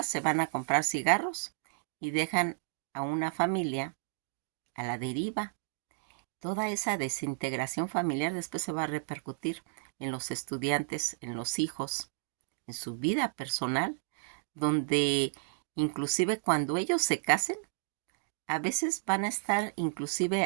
se van a comprar cigarros y dejan a una familia a la deriva. Toda esa desintegración familiar después se va a repercutir en los estudiantes, en los hijos, en su vida personal, donde inclusive cuando ellos se casen, a veces van a estar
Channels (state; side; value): silent; left; digital silence